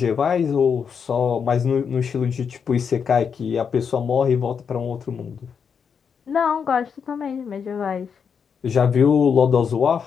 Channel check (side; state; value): right; quieter; 6.7 dB